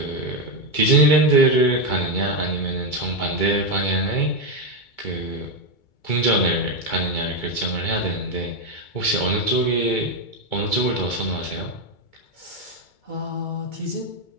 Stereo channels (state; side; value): late; right; 2.2 ms